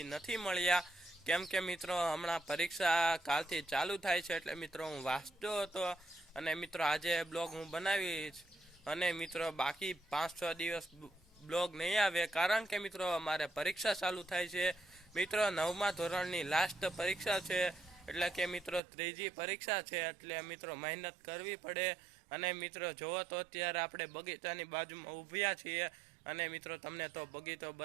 નથી મળ્યા, કેમ કે મિત્રો હમણાં પરીક્ષા કાલથી ચાલુ થાય છે, એટલે મિત્રો હું વાંચતો હતો અને મિત્રો આજે બ્લોગ હું બનાવીશ। અને મિત્રો બાકી 5-6 દિવસ બ્લોગ નહીં આવે, કારણ કે મિત્રો અમારે પરીક્ષા ચાલુ થાય છે। મિત્રો 9મા ધોરણની લાસ્ટ પરીક્ષા છે, એટલે કે મિત્રો ત્રીજી પરીક્ષા છે, એટલે મિત્રો મહેનત કરવી પડે। અને મિત્રો જોવો તો અત્યારે આપણે બગીચાની બાજુમાં ઊભ્યા છીએ, અને મિત્રો તમને તો બગીચો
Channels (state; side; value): drops out; left; at 18.8 s